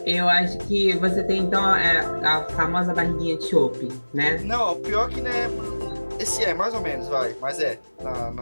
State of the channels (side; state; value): both; inverted; correlation -1.00